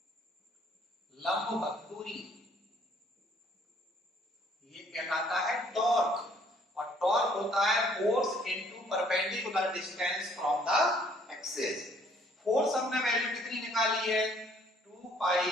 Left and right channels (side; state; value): both; normal; correlation 0.61